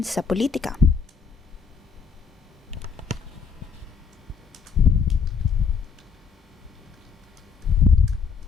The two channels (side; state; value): right; quieter; 5.7 dB